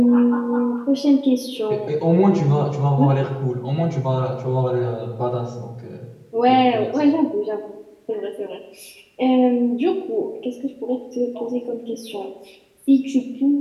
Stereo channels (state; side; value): identical; both; correlation 1.00